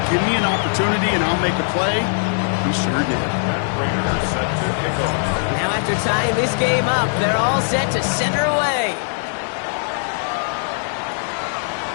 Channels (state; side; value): silent; right; 66 dB below the other